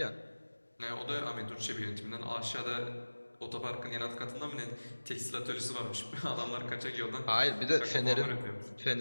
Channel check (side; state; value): both; inverted; correlation -1.00